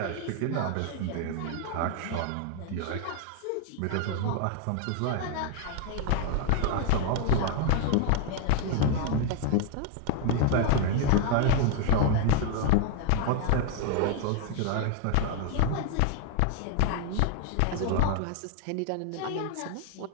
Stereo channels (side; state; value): both; different; correlation 0.01